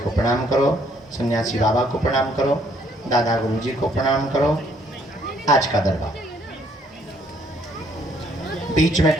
प्रणाम करो, सन्यासी बाबा को प्रणाम करो, दादा गुरुजी को प्रणाम करो। आज का दरबार बीच में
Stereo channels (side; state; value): both; normal; correlation 0.66